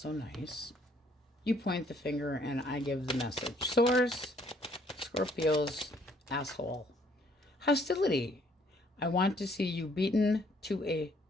nice. You point the finger and I give the message. Source, Scorpio's asshole. Hostility. I want to see you beaten to a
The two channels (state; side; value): normal; both; correlation 0.64